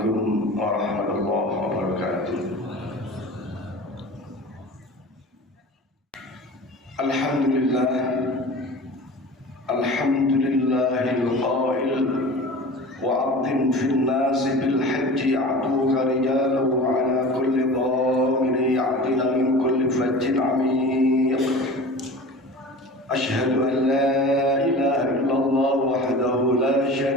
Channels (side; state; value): both; normal; correlation 0.37